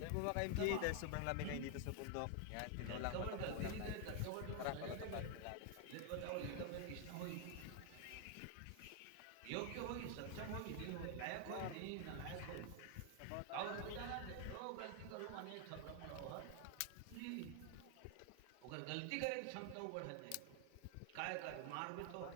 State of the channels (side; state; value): both; different; correlation 0.00